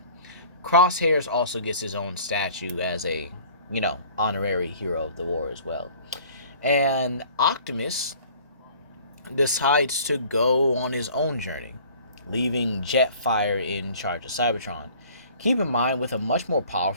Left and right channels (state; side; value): inverted; both; correlation -0.50